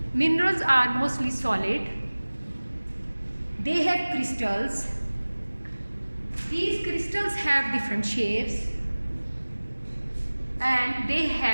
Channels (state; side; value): inverted; both; correlation -1.00